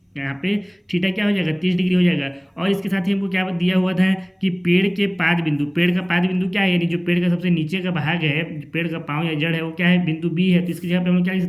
यहाँ पे थीटा क्या हो जाएगा, 30 डिग्री हो जाएगा। और इसके साथ ही हमको क्या दिया हुआ था कि पेड़ के पाद बिंदु, पेड़ का पाद बिंदु क्या है, यानी जो पेड़ का सबसे नीचे का भाग है, पेड़ का पाँव या जड़ है, वो क्या है, बिंदु B है। तो इसकी जगह पे हम लोग क्या लिख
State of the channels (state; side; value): identical; both; correlation 1.00